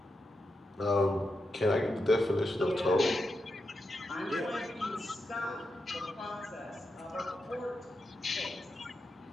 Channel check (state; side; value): normal; both; correlation 0.87